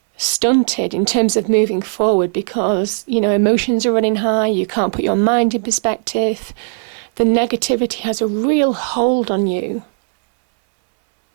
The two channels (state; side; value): silent; left; 66 dB below the other